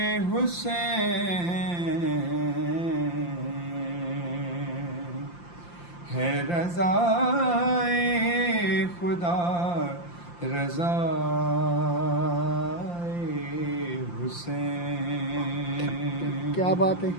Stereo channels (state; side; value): late; right; 5.8 ms